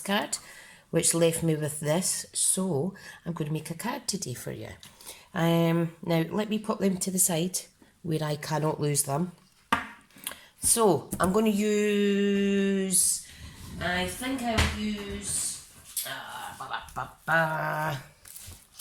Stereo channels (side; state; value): both; identical; correlation 1.00